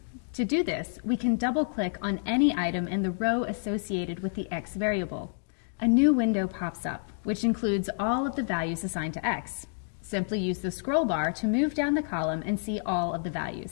To do this, we can double-click on any item in the row associated with the x variable. A new window pops up, which includes all of the values assigned to x. Simply use the scroll bar to move down the column and see all of the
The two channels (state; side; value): silent; right; digital silence